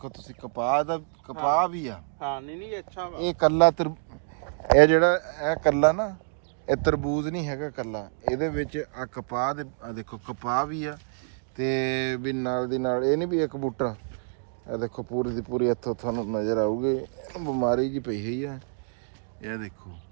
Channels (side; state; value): left; silent; digital silence